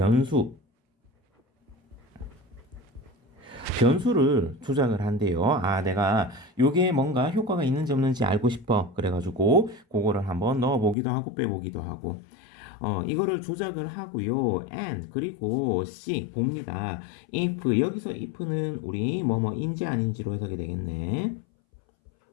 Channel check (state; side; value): drops out; right; at 11.0 s